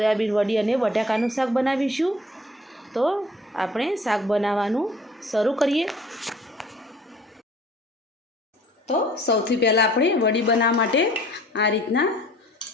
વડી અને બટાકાનું શાક બનાવીશું। તો આપણે શાક બનાવવાનું શરૂ કરીએ। તો સૌથી પહેલાં આપણે વડી બનાવવા માટે આ રીતના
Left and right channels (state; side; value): normal; both; correlation 0.52